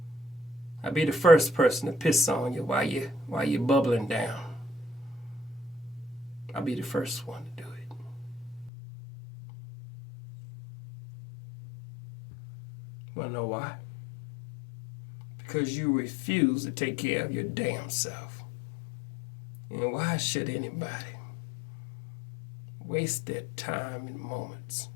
I'll be the first person to piss on you while you're bubbling down. I'll be the first one to do it. Wanna know why? Because you refuse to take care of your damn self. And why should anybody waste their time and moments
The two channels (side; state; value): right; drops out; at 8.7 s